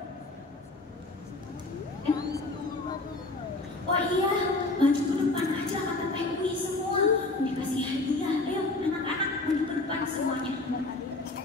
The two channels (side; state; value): right; quieter; 3.1 dB